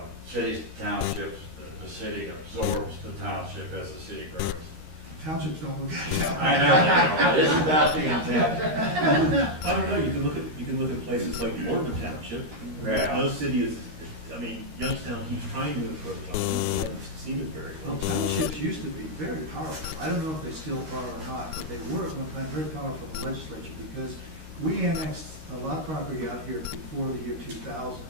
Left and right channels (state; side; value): late; left; 13 ms